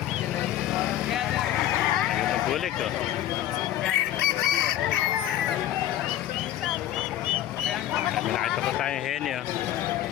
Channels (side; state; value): right; quieter; 12.5 dB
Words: Ayun ang bulik. Oh. Kami nakita pa tayong heni. Oh.